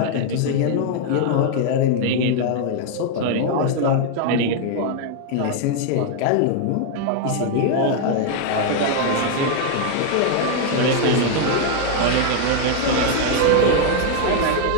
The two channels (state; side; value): different; both; correlation 0.00